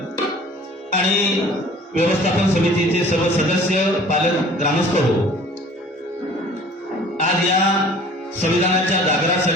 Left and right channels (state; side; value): normal; both; correlation 0.49